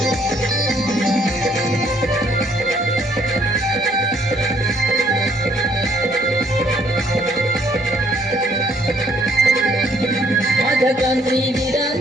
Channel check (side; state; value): both; normal; correlation 0.65